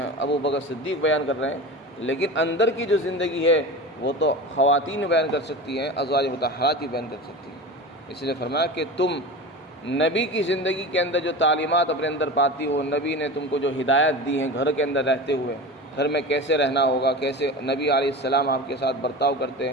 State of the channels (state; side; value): normal; both; correlation 0.30